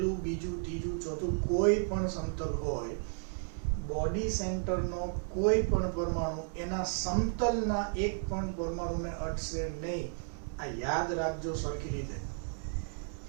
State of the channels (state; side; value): silent; left; 55 dB below the other